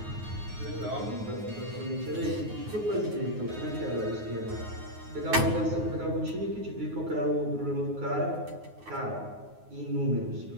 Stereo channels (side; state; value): left; late; 9.5 ms